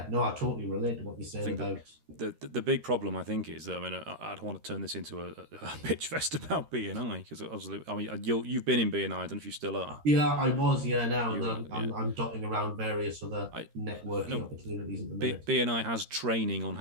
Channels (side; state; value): left; late; 13 ms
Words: totally relate to what you're saying about the big problem. I think is, I don't want to turn this into a pitch fest about B&I, because obviously, you've been in B&I. I don't know if you still are. Yeah, I was. Yeah, now I'm dotting around various other networking opportunities at the minute. B&I has training on